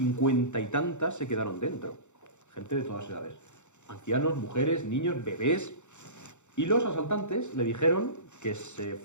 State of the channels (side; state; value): right; late; 0.83 ms